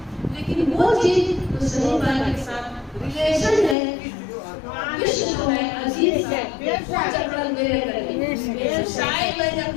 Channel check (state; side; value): drops out; right; at 3.8 s